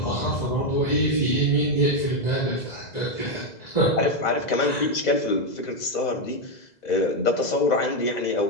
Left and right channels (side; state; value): right; late; 2.0 ms